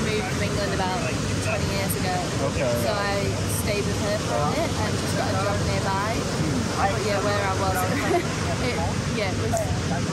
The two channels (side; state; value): both; identical; correlation 1.00